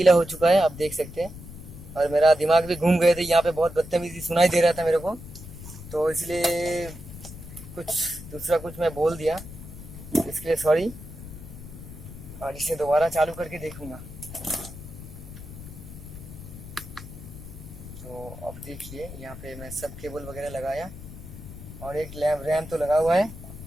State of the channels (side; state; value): left; noise; rumble, 13 dB below the sound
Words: हो चुका है, आप देख सकते हैं। और मेरा दिमाग भी घूम गए थे, यहाँ पे बहुत बदतमीजी सुनाई दे रहा था मेरे को, तो इसलिए कुछ दूसरा कुछ मैं बोल दिया, इसके लिए सॉरी। और इसे दोबारा चालू करके देखूंगा। तो अब देखिए यहाँ पे मैं सब केबल वगैरह लगाया और एक रैम तो लगा हुआ है